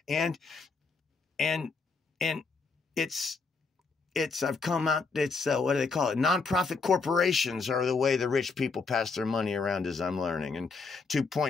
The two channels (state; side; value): quieter; right; 4.4 dB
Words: And I've come out, what do they call it? Nonprofit corporations are the way the rich people pass their money around, as I'm learning. And